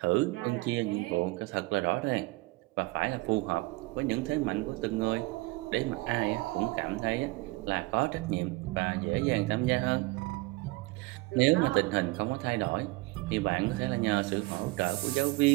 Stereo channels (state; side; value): quieter; left; 22.4 dB